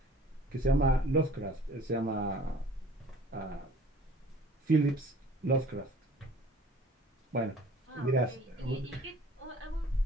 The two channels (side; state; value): both; normal; correlation 0.50